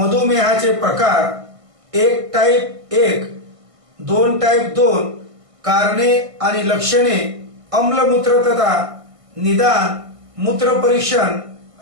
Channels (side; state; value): left; late; 1.5 ms